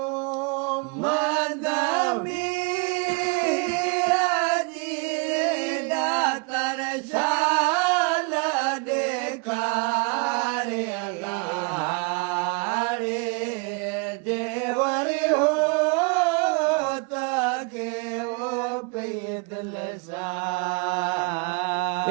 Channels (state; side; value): quieter; left; 32.3 dB